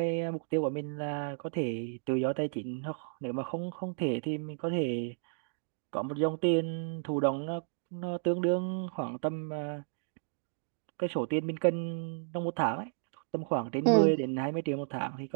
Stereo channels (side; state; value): left; silent; digital silence